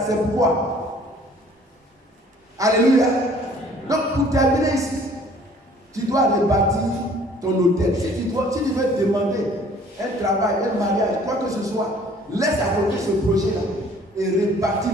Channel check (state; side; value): normal; both; correlation 0.55